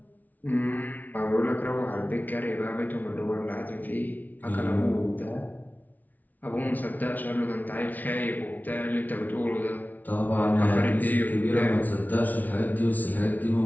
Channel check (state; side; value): late; right; 0.078 ms